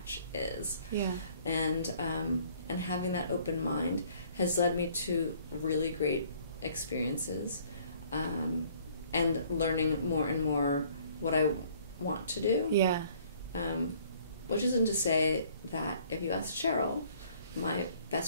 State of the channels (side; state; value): both; inverted; correlation -0.59